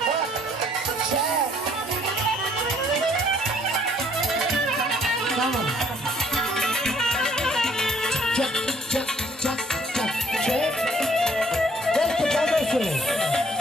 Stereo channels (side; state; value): both; normal; correlation 0.63